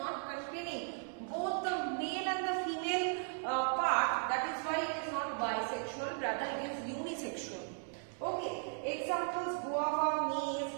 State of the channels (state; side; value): silent; left; 53 dB below the other